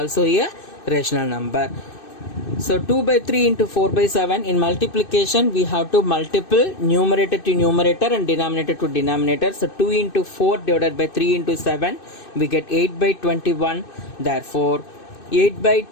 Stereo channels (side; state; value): right; late; 2.6 ms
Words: a rational number. So 2 by 3 into 4 by 7 in multiplication we have to multiple numerator to numerator and denominator to denominator. So 2 into 4 divided by 3 into 7 we get 8 by 21. Therefore 8 by